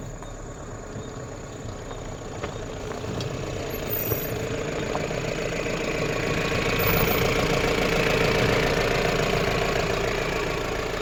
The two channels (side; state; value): both; identical; correlation 1.00